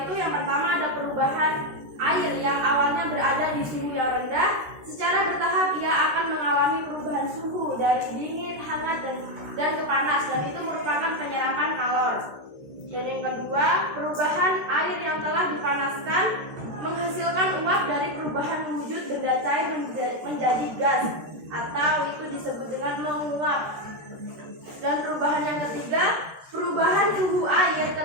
itu yang pertama ada perubahan air yang awalnya berada di suhu yang rendah. Secara bertahap ia akan mengalami perubahan suhu dari dingin, hangat, dan ke panas, dan itu merupakan penyerapan kalor. Dan yang kedua, perubahan air yang telah dipanaskan menghasilkan uap dari perubahan wujud benda cair menjadi gas, atau itu disebut dengan menguap. Dan perubahan yang ketiga, perubahan suhu air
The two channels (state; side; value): late; left; 13 ms